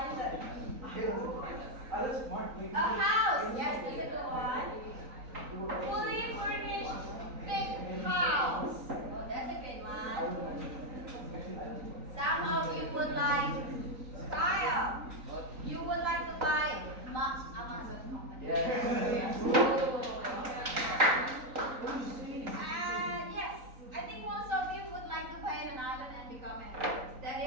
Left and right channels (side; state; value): left; late; 3.9 ms